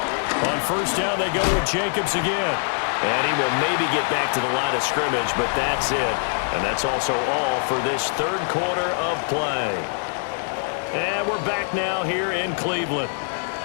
On 1st down, they go with Jacobs again. And he will maybe get back to the line of scrimmage, but that's it. And that's also all for this 3rd quarter of play. And we're back now here in Cleveland.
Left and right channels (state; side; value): silent; right; 60 dB below the other